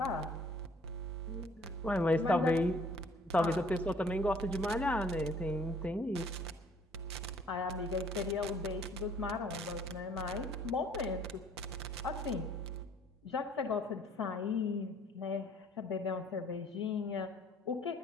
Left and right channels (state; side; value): normal; both; correlation 0.57